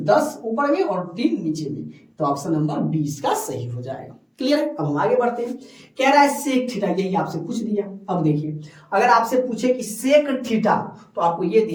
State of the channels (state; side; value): identical; both; correlation 1.00